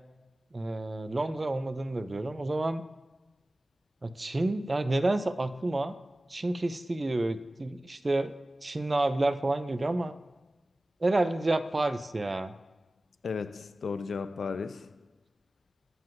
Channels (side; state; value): both; normal; correlation 0.97